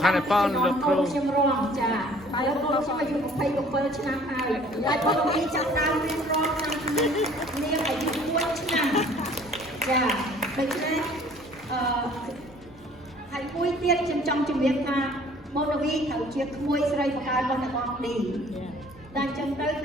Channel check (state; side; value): normal; both; correlation 0.54